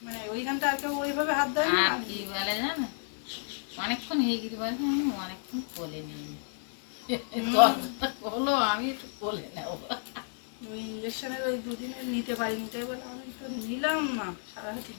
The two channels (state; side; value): silent; right; 57 dB below the other